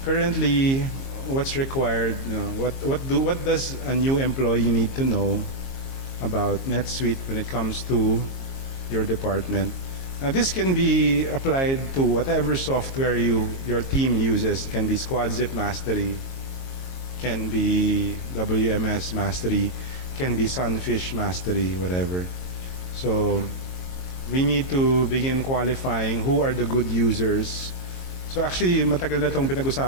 currently, what's required? You know, what does a new employee need to know about NetSuite when it comes to your department? Now, this can be applied to whatever software your team uses. It can be SquadZip Mastery, can be WMS Mastery, can be Sunfish Mastery, whatever. So we need to begin qualifying who are the good users. So actually, matagal na itong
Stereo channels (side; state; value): right; late; 22 ms